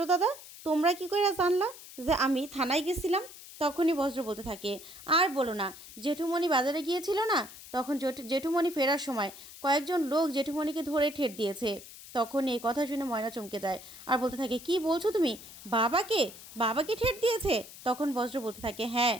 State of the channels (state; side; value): noise; left; hiss, 16 dB below the sound